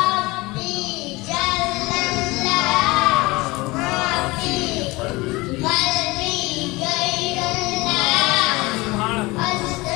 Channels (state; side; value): quieter; right; 22.6 dB